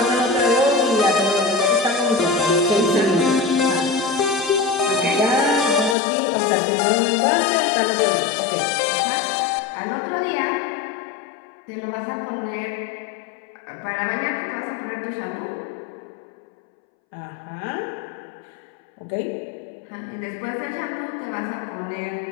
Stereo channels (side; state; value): right; drops out; at 6.0 s